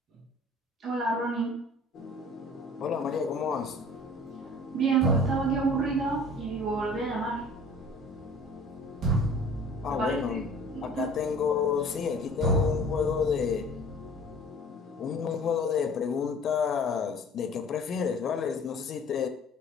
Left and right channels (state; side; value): normal; both; correlation 0.47